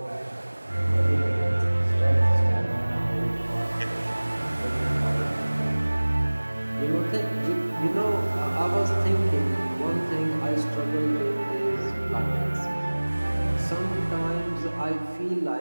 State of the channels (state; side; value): inverted; both; correlation -1.00